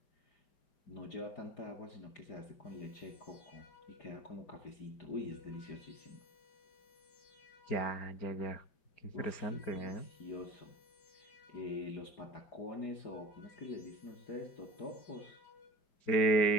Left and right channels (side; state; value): right; late; 5.1 ms